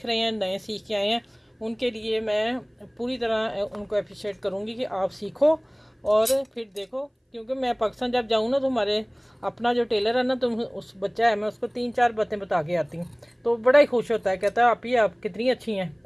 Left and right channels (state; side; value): identical; both; correlation 1.00